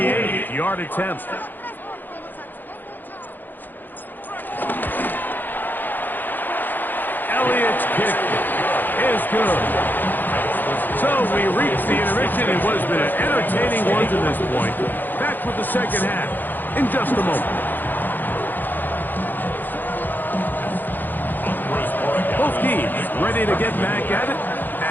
attempt. Elliott's kick is good. So we reach the intermission in what has been an entertaining one to this point. Back with the second half in just a moment. Both teams ready to get back at it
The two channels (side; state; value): right; late; 0.088 ms